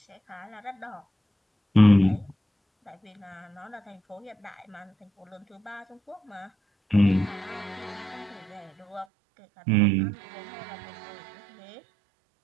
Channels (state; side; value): drops out; left; at 9.1 s